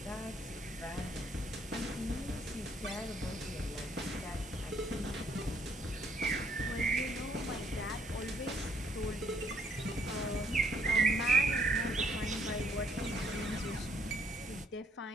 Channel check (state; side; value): normal; both; correlation 0.67